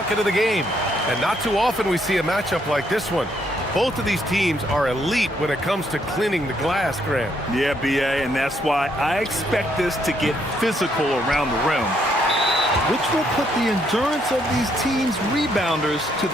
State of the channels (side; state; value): both; normal; correlation 0.72